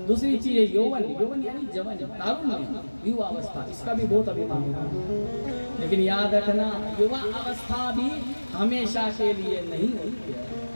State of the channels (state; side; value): inverted; both; correlation -1.00